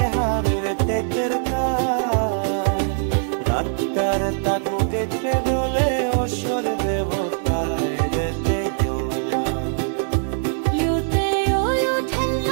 হার তেতের কাজ, আত্মার তাকু দেখে দোলে অসর দেবতায় যেতে জোলা লুতে ওই ওঠেন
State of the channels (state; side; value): silent; left; 64 dB below the other